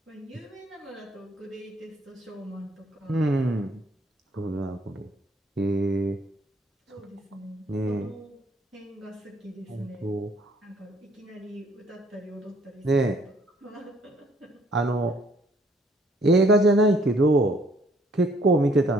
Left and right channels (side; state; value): both; normal; correlation 0.63